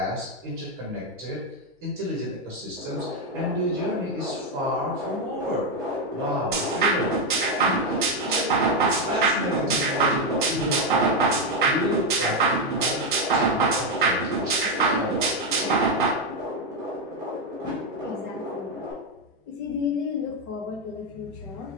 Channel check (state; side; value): normal; both; correlation 0.06